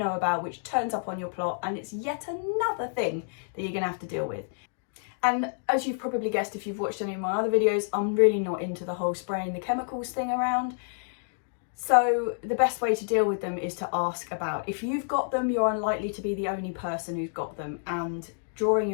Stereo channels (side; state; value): right; silent; digital silence